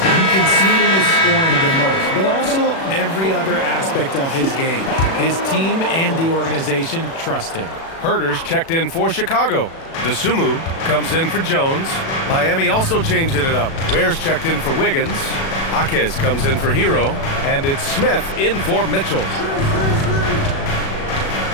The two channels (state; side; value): late; right; 36 ms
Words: You can see it in his scoring the most, but also every other aspect of his game. His team and the organization trust him. Herders checked in for Chicago. DeSumo comes in for Jones. Miami also changing it up. Wares checked in for Wiggins. Jaquez comes in for Hero. And it's Smith in for Mitchell.